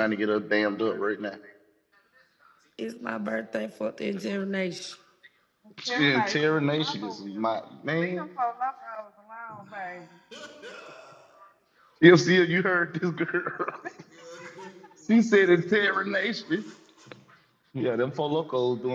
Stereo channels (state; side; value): identical; both; correlation 1.00